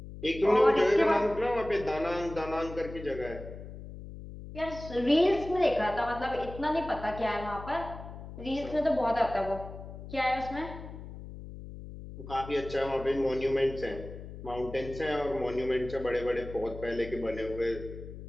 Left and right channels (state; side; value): noise; left; hum, 12 dB below the sound